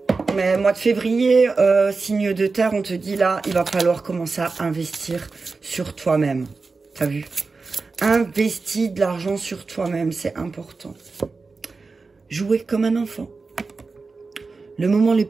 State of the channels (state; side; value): quieter; left; 4.1 dB